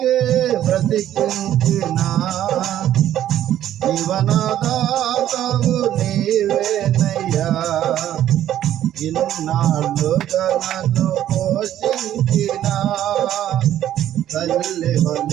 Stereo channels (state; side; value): quieter; left; 11.8 dB